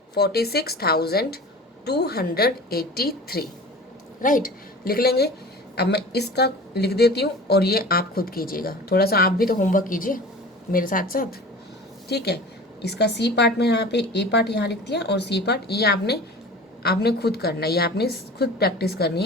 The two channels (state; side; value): normal; both; correlation 0.39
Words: राइट। लिख लेंगे। अब मैं इसका लिख देती हूँ और ये आप खुद कीजिएगा, थोड़ा सा आप भी तो होमवर्क कीजिए मेरे साथ साथ, ठीक है। इसका सी पार्ट में यहाँ पे, ए पार्ट यहाँ लिख दिया और सी पार्ट ये आपने खुद करना है, ये आपने खुद प्रैक्टिस करनी